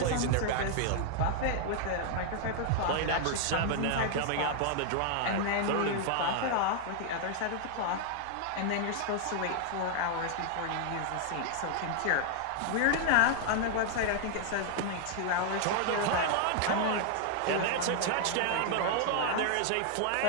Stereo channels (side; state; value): both; different; correlation 0.00